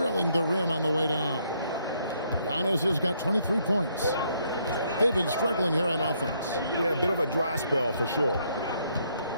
the rim on the way down. Giannis has got 23 points. They've been struggling here on offense. Yeah, a bit of a dry spell for sure.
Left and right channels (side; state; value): both; inverted; correlation -0.71